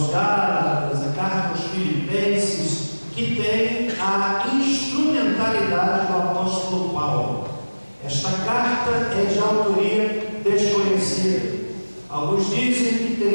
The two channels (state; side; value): inverted; both; correlation -1.00